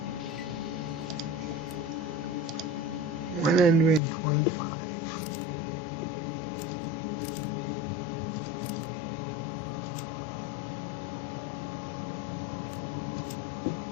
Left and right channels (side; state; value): right; drops out; at 4.0 s